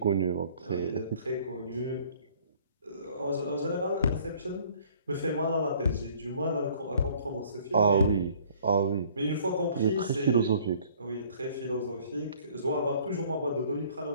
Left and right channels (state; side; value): inverted; both; correlation -0.56